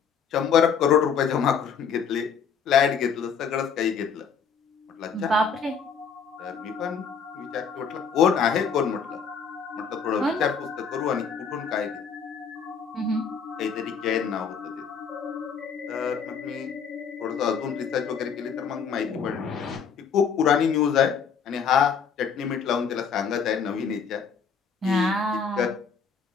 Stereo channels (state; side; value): quieter; right; 6.3 dB